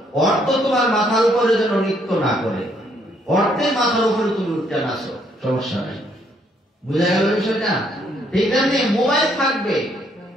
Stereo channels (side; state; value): both; normal; correlation 0.69